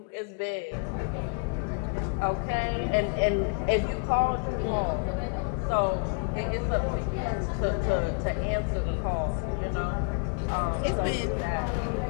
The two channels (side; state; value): right; quieter; 39.1 dB